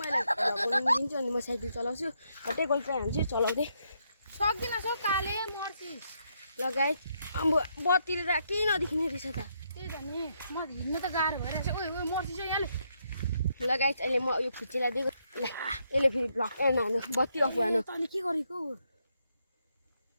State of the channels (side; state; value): both; inverted; correlation -0.77